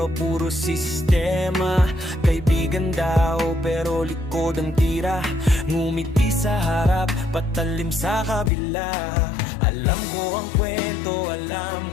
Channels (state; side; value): drops out; right; at 8.5 s